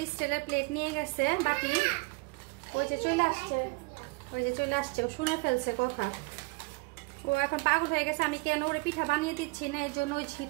স্টিলের প্লেট নিয়ে গেছে, বাটি। ওই যে চলে আসছে, ও শুনে ফেলছে কথা। ও এখন পাগল হয়ে গেছে আমি কেন ওরে পিঠা বানিয়ে দিচ্ছি না, এই জন্য ওই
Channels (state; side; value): quieter; left; 27.4 dB